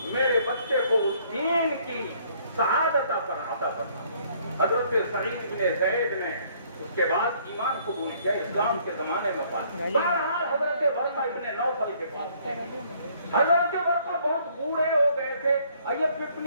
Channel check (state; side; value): inverted; both; correlation -0.63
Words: میرے بچے کو اس دین کی سعادت عطا کرنا. حضرت سعید بن زید نے اس کے بعد ایمان قبول کیا، اسلام کے زمانے میں پایا. بہرحال حضرت ورقہ ابن نوفل کے پاس تھے. حضرت ورقہ بہت بوڑھے ہو گئے تھے، یہ